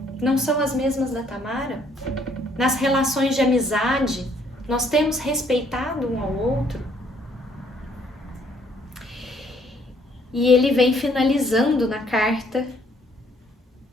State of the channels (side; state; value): both; normal; correlation 0.65